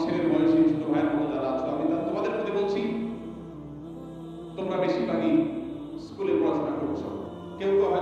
ছেলের বয়সী ছোট ভাইয়ের মতো যারা আছো, আমি তোমাদের প্রতি বলছি, তোমরা বেশিরভাগই স্কুলে পড়াশোনা করছো, কেউ কেউ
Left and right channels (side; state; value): both; identical; correlation 1.00